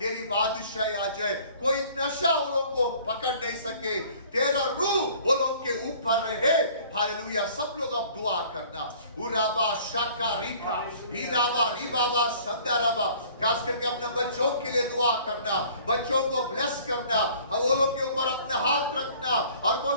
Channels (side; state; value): both; inverted; correlation -0.52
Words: तेरी बादशाही आ जाए। कोई नशा वो लोग को पकड़ नहीं सके, तेरा रूह वो लोग के ऊपर रहे। हालेलुया। सब लोग अब दुआ करना। उराबा शाका रिखा हीराबा रिबाबा संदाराबा, खास करके अपने बच्चों के लिए दुआ करना, बच्चों को ब्लेस करना, वो लोग के ऊपर अपना हाथ रखना और